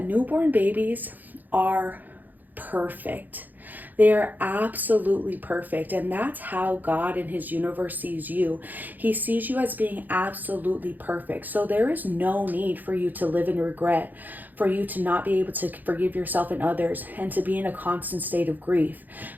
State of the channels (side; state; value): left; late; 0.085 ms